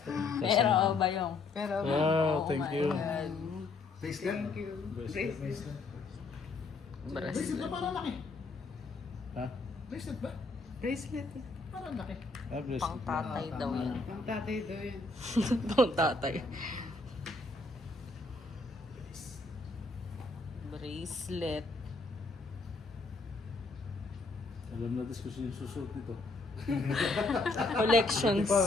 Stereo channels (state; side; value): quieter; right; 3.6 dB